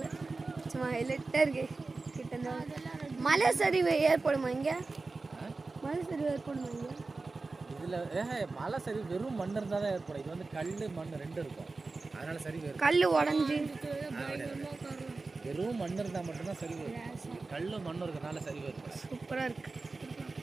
சும்மா ஹைலைட்டாக இருக்கு. கிட்ட மலை சரிவு ஏற்படுமா இங்கே? மலை சரிவு ஏற்படுமா இங்கே? இதில் மலை சரிவு வெறும் மண் இருந்தால் தான் ஏற்படும். இது வந்து கல் மண் 2 இருக்கும். அதனால சரிவு கல் உடஞ்சி வெறும் மண் இருந்தால் மட்டும்தான் சரிவு. கல் மண் இருக்கிறதுனால சரிவு இருக்கும். சூப்பராக இருக்கு.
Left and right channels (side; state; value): left; quieter; 3.7 dB